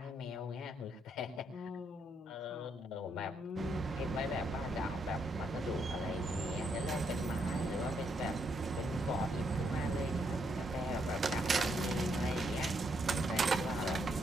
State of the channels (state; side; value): normal; both; correlation 0.76